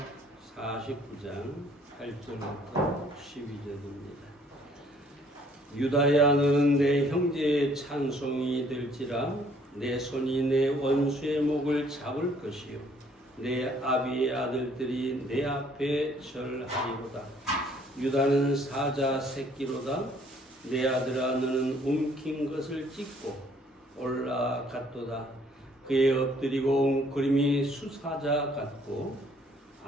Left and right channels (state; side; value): normal; both; correlation 0.61